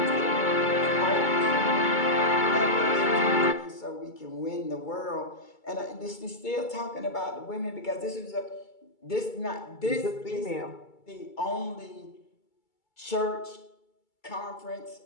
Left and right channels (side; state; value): right; late; 2.3 ms